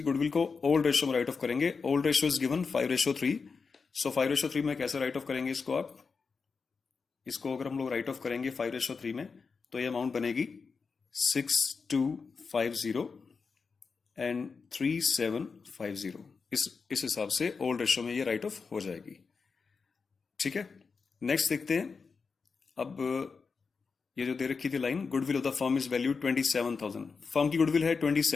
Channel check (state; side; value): quieter; right; 5.0 dB